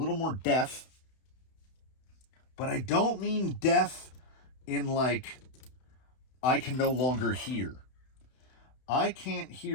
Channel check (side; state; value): right; late; 31 ms